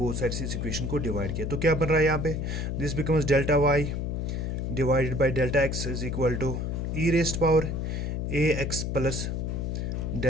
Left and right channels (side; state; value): left; noise; hum, 2 dB below the sound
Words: साइड से इस इक्वेशन को डिवाइड किया। तो क्या बन रहा है यहाँ पे, this becomes delta y divided by delta x is equal to e raised power a x plus